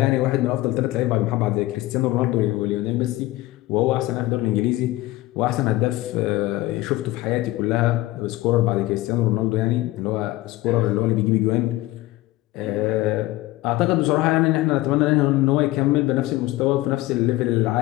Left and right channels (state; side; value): quieter; right; 18.0 dB